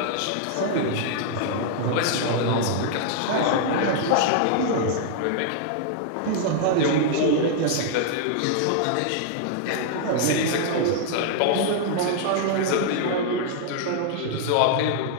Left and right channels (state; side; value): different; both; correlation -0.01